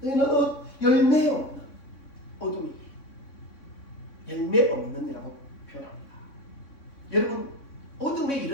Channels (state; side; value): late; right; 3.6 ms